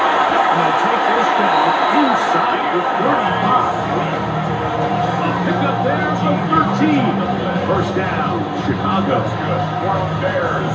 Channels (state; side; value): identical; both; correlation 1.00